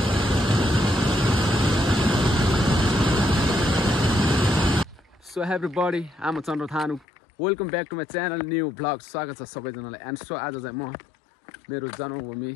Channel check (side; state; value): right; drops out; at 7.1 s